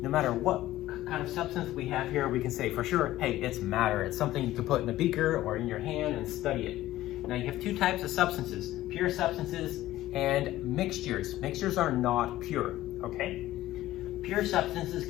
No matter what kind of substance we have here, we can say for sure, hey, it's matter. It's something you can put in a beaker or in your hand and study it. Now you have two types of substances, pure substances and mixtures. Mixtures are not pure, okay? Pure substances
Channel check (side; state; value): right; quieter; 15.3 dB